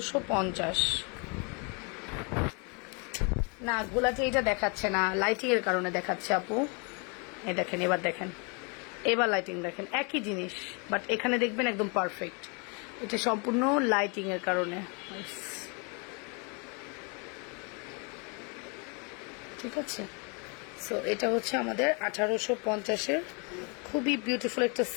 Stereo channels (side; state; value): right; quieter; 34.0 dB